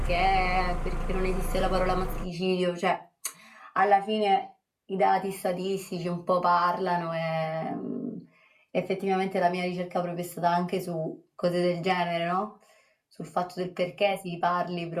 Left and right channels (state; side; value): identical; both; correlation 1.00